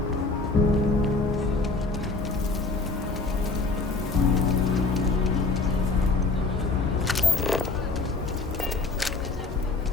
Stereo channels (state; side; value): quieter; right; 3.6 dB